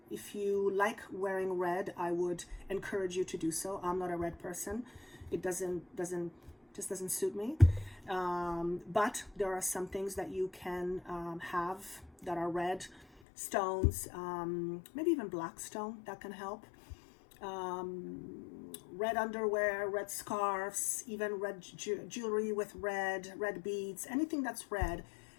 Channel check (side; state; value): right; drops out; at 13.1 s